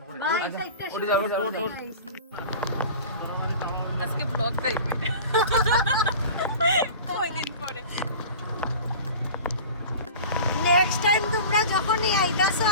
করে ভাই সাইডটা ওরে যাও আজকে ব্লগ দেখবে ওই করে। নেক্সট টাইম তোমরা যখনই আইতাছো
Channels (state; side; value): inverted; both; correlation -0.37